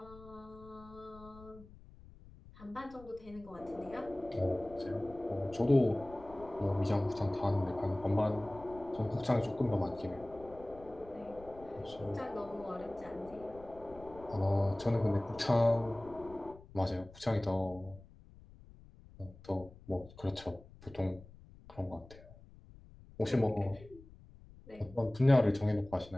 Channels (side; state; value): left; noise; rumble, 20 dB below the sound